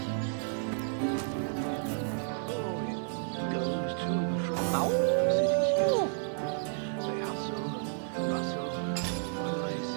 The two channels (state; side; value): silent; left; digital silence